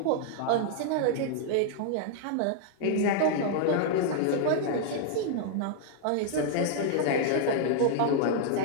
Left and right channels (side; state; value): both; different; correlation -0.01